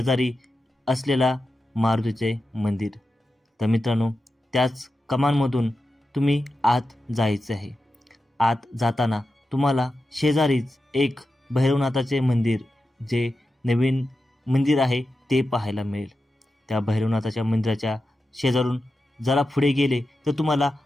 असलेला मारुतीचे मंदिर। तर मित्रांनो, त्याच कमानमधून तुम्ही आत जायचे आहे। आत जाताना तुम्हाला शेजारीच एक भैरवनाथाचे मंदिर, जे नवीन मंदिर आहे ते पाहायला मिळेल। त्या भैरवनाथाच्या मंदिराच्या शेजारून जरा पुढे गेले तर तुम्हाला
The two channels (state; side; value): normal; both; correlation 0.91